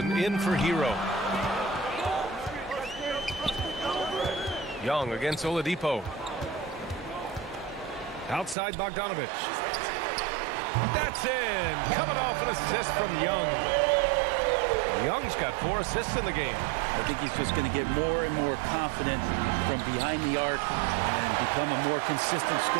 in for Hero. Young against Oladipo. Outside Bogdanovich. That's in. Coming off an assist from Young. Young's got 4 assists in the game. I think he's just going to get more and more confident from behind the arc and become a more consistent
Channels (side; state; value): left; drops out; at 8.6 s